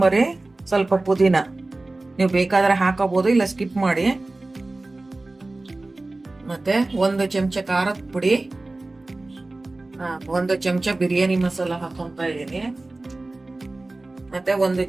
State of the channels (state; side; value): quieter; left; 3.0 dB